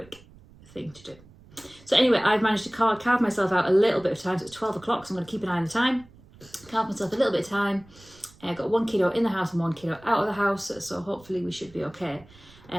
thing to do. So anyway, I've managed to carve myself out a little bit of time. So it's 12 o'clock, so I'm going to keep an eye on the time. Carve myself a little bit of time. I've got 1 kiddo in the house and 1 kiddo out of the house, so hopefully we should be okay.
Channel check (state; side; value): noise; right; rumble, 24 dB below the sound